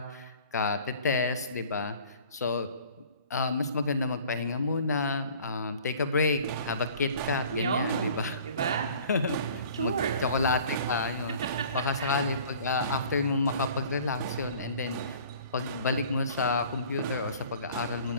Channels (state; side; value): inverted; both; correlation -0.49